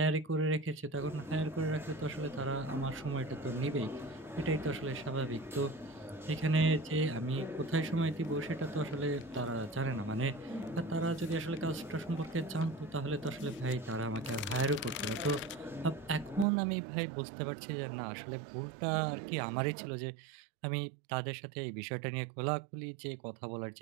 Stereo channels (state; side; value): drops out; left; at 16.4 s